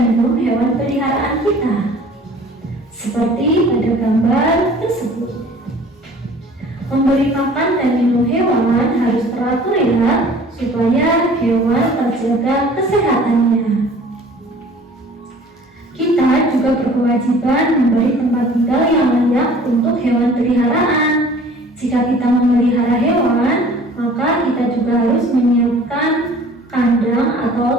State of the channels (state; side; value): normal; both; correlation 0.49